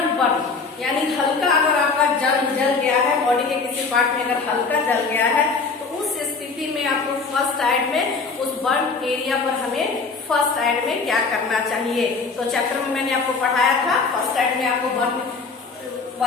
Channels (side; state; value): right; quieter; 4.5 dB